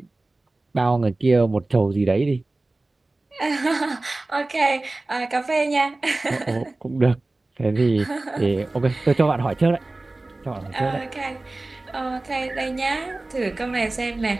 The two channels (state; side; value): quieter; left; 3.0 dB